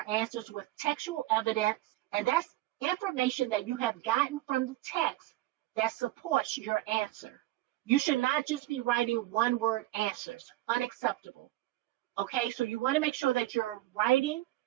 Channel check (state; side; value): quieter; left; 16.8 dB